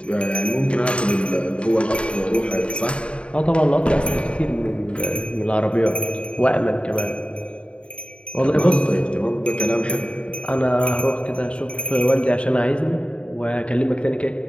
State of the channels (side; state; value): right; late; 0.058 ms